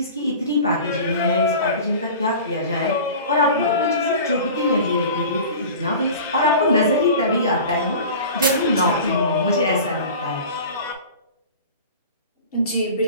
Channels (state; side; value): inverted; both; correlation -0.38